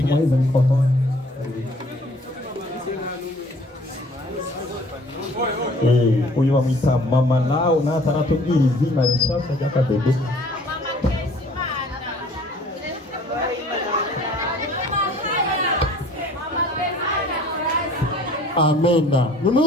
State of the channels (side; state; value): both; normal; correlation 0.53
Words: mikoro. Uyu bamwita mama lao nataratubwira izina rishasha ry'akabebe. Amena.